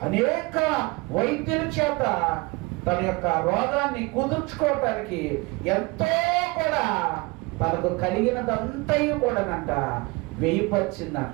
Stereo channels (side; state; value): left; quieter; 25.4 dB